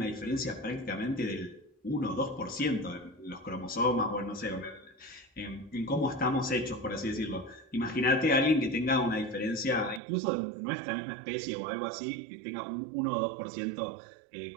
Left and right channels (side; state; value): left; drops out; at 10.0 s